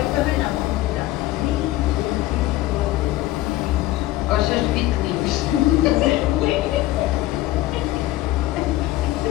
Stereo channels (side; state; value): right; quieter; 16.2 dB